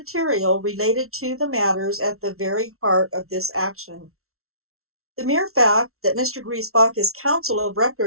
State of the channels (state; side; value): late; left; 0.63 ms